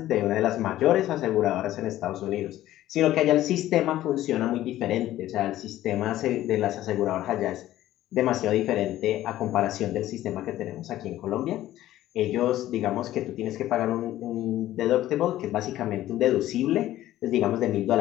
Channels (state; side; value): quieter; right; 14.1 dB